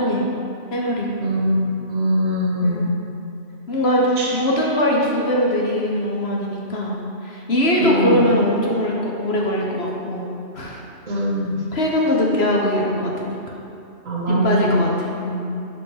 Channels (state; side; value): late; right; 3.0 ms